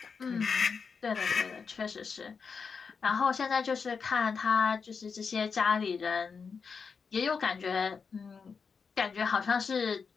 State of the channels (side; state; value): right; quieter; 5.5 dB